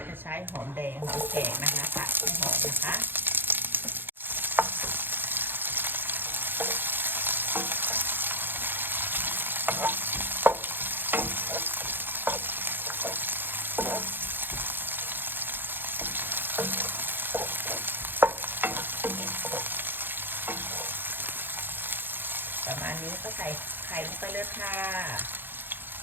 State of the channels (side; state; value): left; late; 0.097 ms